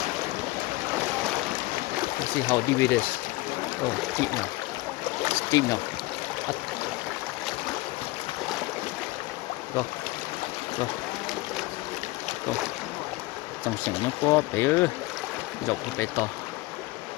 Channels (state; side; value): quieter; right; 20.7 dB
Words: let's see how deep it is. Oh, deep now, up, go, trong sảnh nó có bé dọc bé to.